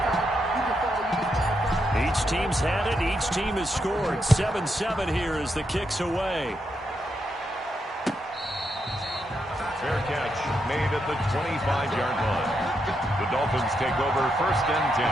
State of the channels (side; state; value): both; normal; correlation 0.82